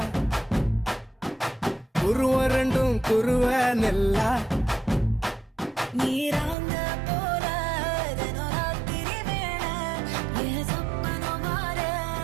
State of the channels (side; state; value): left; drops out; at 6.6 s